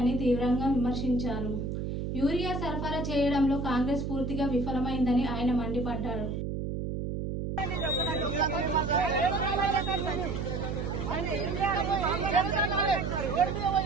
తీవ్రంగా విమర్శించారు। యూరియా సరఫరా చేయడంలో కాంగ్రెస్ పూర్తిగా విఫలమైందని ఆయన మండిపడ్డారు।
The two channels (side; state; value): right; noise; hum, 3 dB below the sound